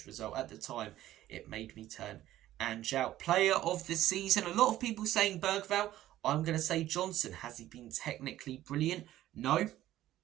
result, at the time, it made me turn and shout. Player of the season, a lot of people saying Bergvall. I'm going to say Johnson. Has he been technically brilliant? No.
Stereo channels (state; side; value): quieter; left; 13.9 dB